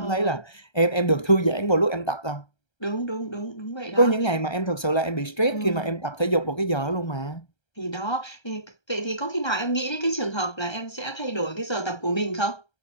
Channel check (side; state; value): right; late; 1.3 ms